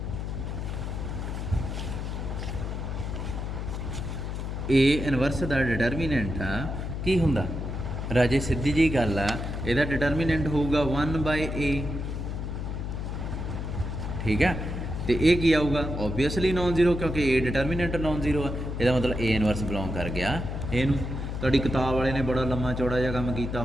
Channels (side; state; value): left; noise; hum, 4 dB below the sound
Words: A ਇਨਵਰਸ ਦਾ ਡਿਟਰਮੀਨੈਂਟ ਆ ਕੀ ਹੁੰਦਾ ਰਾਜੇ? ਸਿੱਧੀ ਜਿਹੀ ਗੱਲ ਆ, ਇਹਦਾ ਡਿਟਰਮੀਨੈਂਟ ਹੋਊਗਾ 1/A, ਠੀਕ ਆ। ਅਤੇ ਇਹ ਕੀ ਆਊਗਾ, ਓਬਵੀਅਸਲੀ ਨੋਨ ਜ਼ੀਰੋ, ਕਿਉਂਕਿ A ਡਿਟਰਮੀਨੈਂਟ ਨੋਨ ਜ਼ੀਰੋ ਆ। ਇਹਦਾ ਮਤਲਬ A ਇਨਵਰਸ ਬਿਲੋਂਗ ਕਰ ਗਿਆ ਇਹਨੂੰ। ਤੁਹਾਡੀ ਕਿਤਾਬ ਵਾਲੇ ਨੇ ਬੜਾ ਲੰਮਾ ਚੌੜਾ ਜਿਹਾ ਕੰਮ ਕੀਤਾ